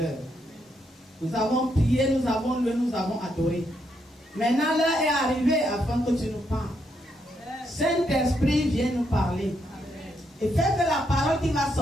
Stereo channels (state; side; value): normal; both; correlation 0.78